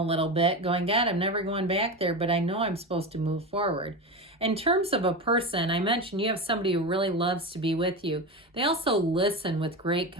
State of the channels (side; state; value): both; normal; correlation 0.22